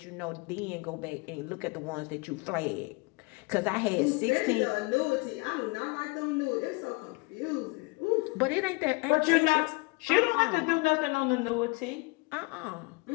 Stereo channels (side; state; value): right; quieter; 26.1 dB